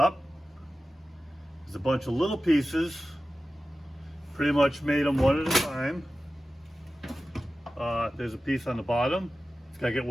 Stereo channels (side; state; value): both; normal; correlation 0.95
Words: There's a bunch of little pieces. Pretty much made them one at a time. There's a piece on the bottom. It's got to get